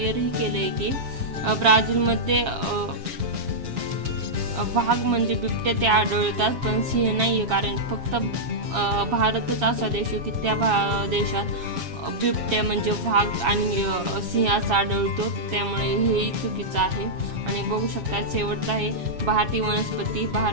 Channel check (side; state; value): left; late; 7.3 ms